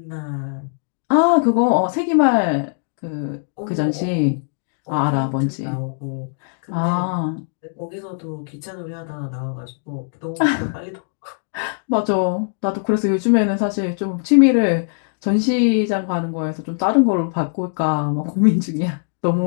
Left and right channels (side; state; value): right; silent; digital silence